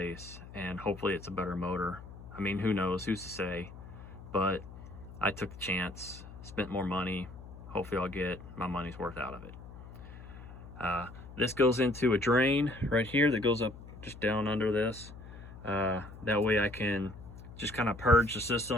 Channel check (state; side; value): noise; left; hum, 15 dB below the sound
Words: and hopefully it's a better motor. I mean, who knows, who's to say, but I took the chance, spent more money. Hopefully I'll get my money's worth out of it. This goes into a drain right here that goes up just down under this. That way I can just kind of purge the